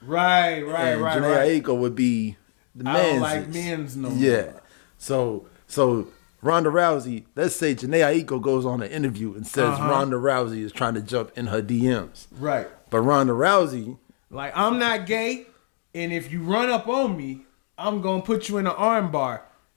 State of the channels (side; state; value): right; silent; digital silence